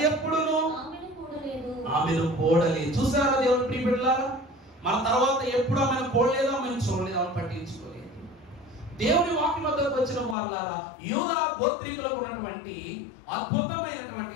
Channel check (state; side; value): drops out; right; at 10.4 s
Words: ఎప్పుడును ఆమెను కూడలేదు. చూసారా దేవుని ప్రియ బిడ్డలారా? మన తర్వాత ఎప్పుడు ఆమెను కూడలేదు, ఆమెను చూడలేదు, ఆమెను పట్టించుకోలేదు. దేవుని వాక్యం వద్దకు వచ్చిన వాళ్ళారా, యూదా గోత్రీకులకు ఉన్నటువంటి అద్భుతమైనటువంటి